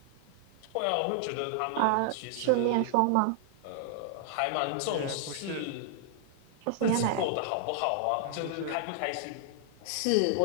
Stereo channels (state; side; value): different; both; correlation 0.00